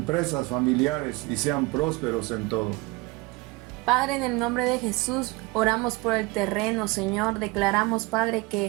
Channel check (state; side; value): quieter; left; 24.3 dB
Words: familiares y sean prósperos en todo. Padre, en el nombre de Jesús, oramos por el terreno, Señor. Declaramos, Padre,